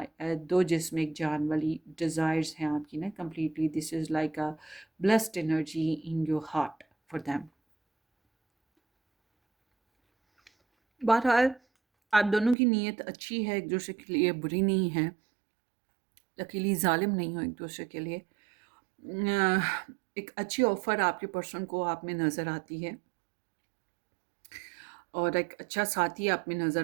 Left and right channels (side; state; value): left; drops out; at 12.6 s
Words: दो जिस्म एक जान वाली डिज़ायर्स हैं आपकी ना completely. This is like a blessed energy in your heart for them. बहरहाल आप दोनों की नीयत अच्छी है, एक दूसरे के लिए बुरी नहीं है. अकेली जालिम नहीं हो एक दूसरे के लिए. एक अच्छी ऑफ़र आपके पर्सन को आप में नज़र आती है और एक अच्छा साथी आप में